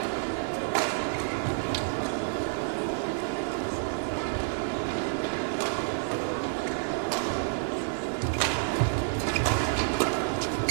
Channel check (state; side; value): silent; left; 59 dB below the other